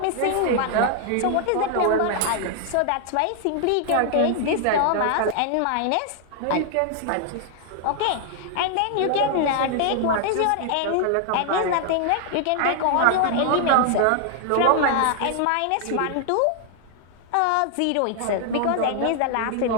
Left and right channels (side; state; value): both; different; correlation 0.00